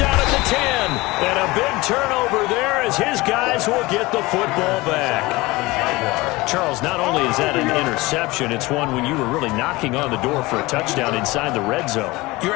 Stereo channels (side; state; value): right; quieter; 21.4 dB